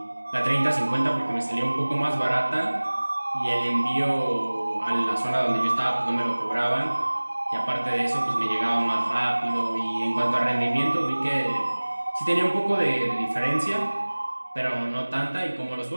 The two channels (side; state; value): both; inverted; correlation -1.00